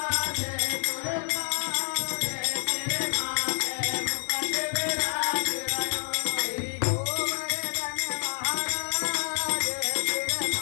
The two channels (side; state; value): right; silent; 59 dB below the other